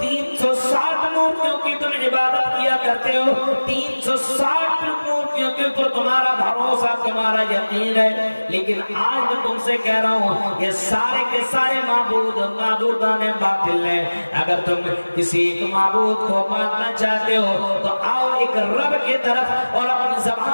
360 مورتیوں کی تم عبادت کیا کرتے ہو، 360 مورتیوں کے اوپر تمہارا بھروسہ، تمہارا یقین ہے، لیکن آج میں تم سے کہہ رہا ہوں یہ سارے کے سارے معبودان باطل ہیں۔ اگر تم کسی ایک معبود کو ماننا چاہتے ہو تو آؤ ایک رب کی طرف اور اپنی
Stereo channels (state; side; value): inverted; both; correlation -1.00